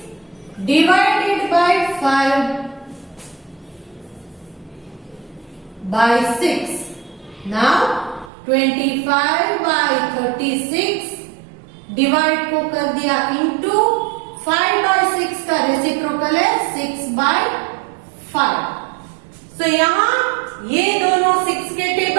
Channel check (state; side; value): drops out; left; at 8.3 s